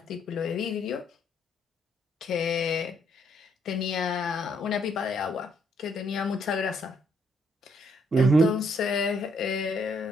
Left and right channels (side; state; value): both; normal; correlation 0.71